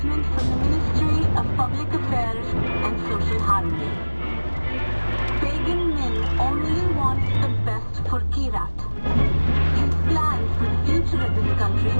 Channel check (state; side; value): inverted; both; correlation -1.00